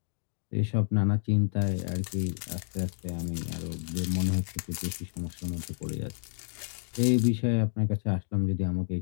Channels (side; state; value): right; silent; digital silence